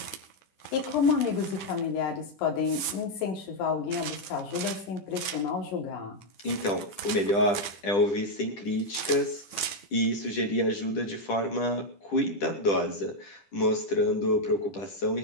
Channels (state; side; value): late; right; 10 ms